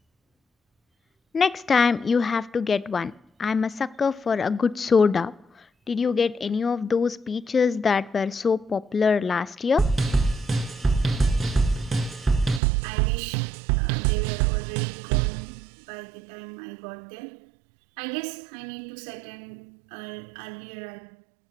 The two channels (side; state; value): left; drops out; at 12.6 s